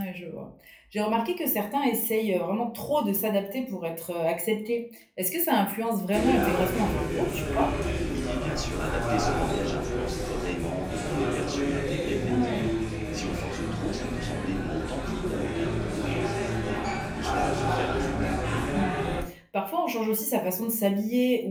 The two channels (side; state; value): both; identical; correlation 1.00